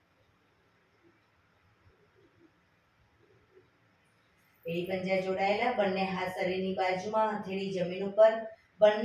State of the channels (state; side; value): identical; both; correlation 1.00